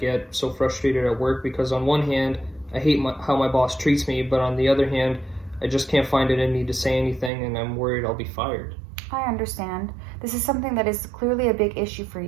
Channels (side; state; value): left; drops out; at 7.3 s